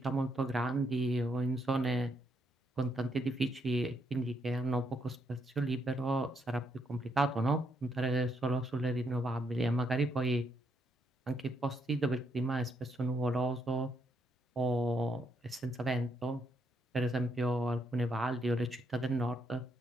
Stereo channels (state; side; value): normal; both; correlation 0.76